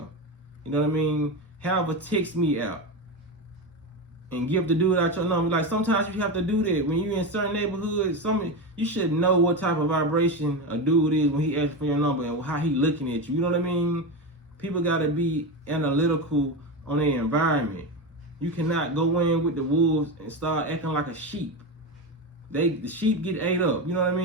You know what I mean? Have her text me out and give the dude out your number. Like, sometimes you have to do that when you're in certain neighborhoods. You should know what type of vibration a dude is when he asks for your number and how he looking at you. You know what I mean? People gotta be analytical on their environment. You cannot go in with the wolves and start acting like a sheep. The sheep get ate up, you know what I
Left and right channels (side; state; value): both; normal; correlation 0.18